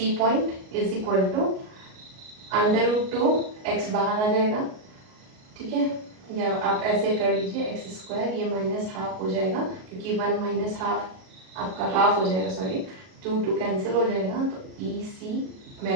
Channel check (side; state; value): left; late; 38 ms